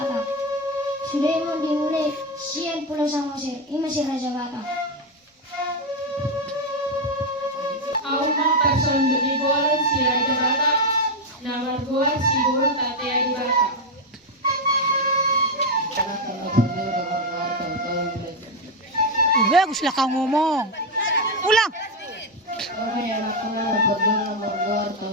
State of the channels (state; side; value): normal; both; correlation 0.05